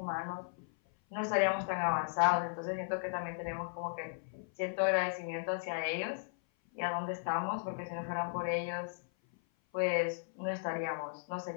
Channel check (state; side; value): silent; right; 54 dB below the other